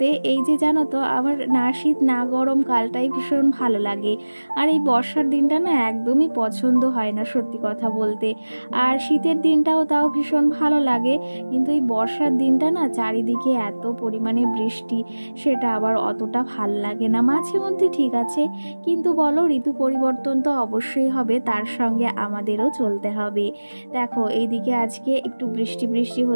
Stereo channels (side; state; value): both; inverted; correlation -1.00